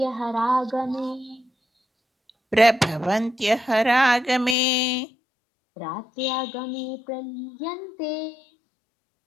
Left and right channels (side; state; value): right; drops out; at 4.5 s